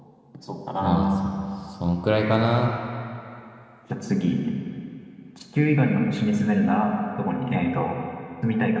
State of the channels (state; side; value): identical; both; correlation 1.00